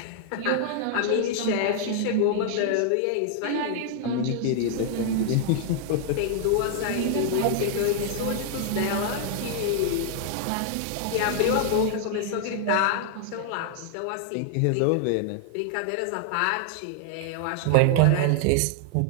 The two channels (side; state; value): both; different; correlation 0.00